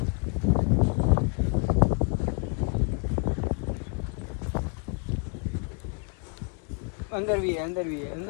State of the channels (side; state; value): right; quieter; 36.3 dB